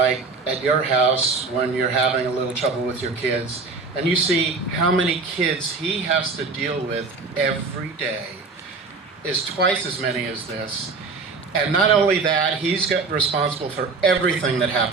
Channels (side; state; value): left; quieter; 4.2 dB